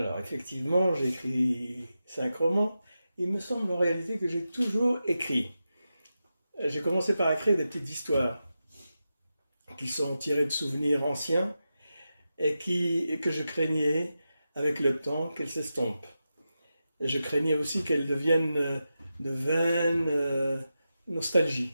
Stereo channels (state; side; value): inverted; both; correlation -0.90